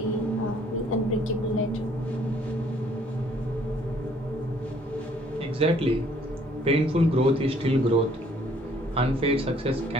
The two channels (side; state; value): both; normal; correlation 0.61